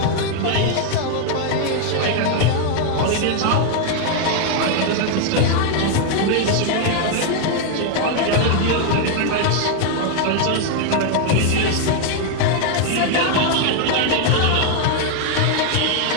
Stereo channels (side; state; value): both; different; correlation 0.00